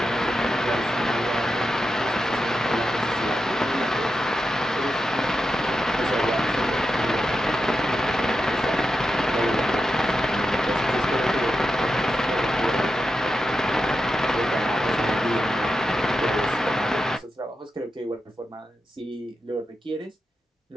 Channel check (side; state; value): both; normal; correlation 0.88